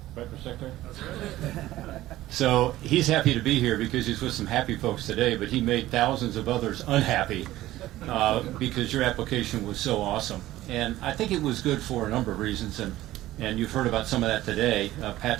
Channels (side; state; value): left; quieter; 15.6 dB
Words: Right, Mr. Secretary? That's right. So he's happy to be here because he's with some happy folks today, but he made thousands of others unhappy because your application was so awesome. And I think it was good for a number of reasons, and you've heard about some of that today. Pat